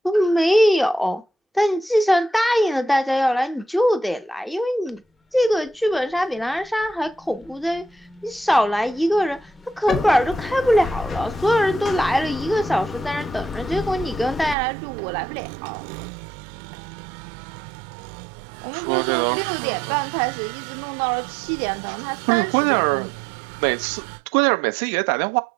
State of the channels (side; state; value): left; drops out; at 14.6 s